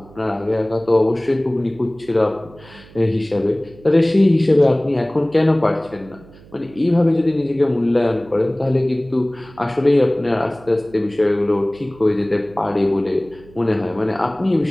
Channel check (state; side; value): noise; right; hum, 23 dB below the sound